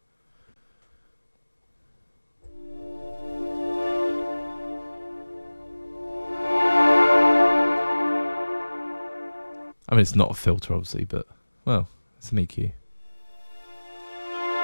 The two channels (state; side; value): inverted; both; correlation -1.00